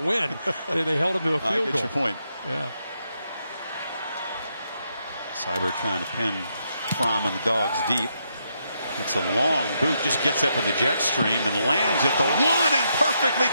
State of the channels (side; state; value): both; inverted; correlation -0.79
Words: They held him to a field goal. I get your point. Yeah. Seibert trying to pin Fromm and the Dogs deep. It's a long boot, just gets up in the jet stream and lands at the 1 and perfectly